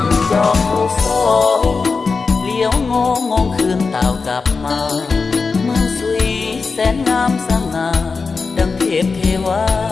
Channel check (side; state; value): right; quieter; 4.6 dB